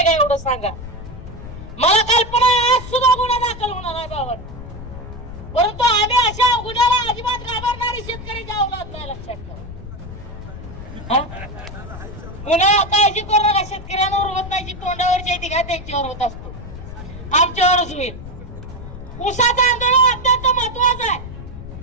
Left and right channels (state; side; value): noise; left; rumble, 13 dB below the sound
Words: का एवढं सांगा. मला कल्पना आहे आज सुद्धा गुन्हा दाखल होणार आहे बाबा, परंतु आम्ही अशा गुन्ह्याला अजिबात घाबरणारी शेतकरी औलाद नाही, लक्षात ठेवा. गुन्हा काळजी करू नका, शेतकऱ्यांवर होत नाही, जी तोंडावरची आहे ती काय त्यांच्यावर होत असतो, आमच्यावरच होईल. ऊसाचं आंदोलन अत्यंत महत्वाचं आहे.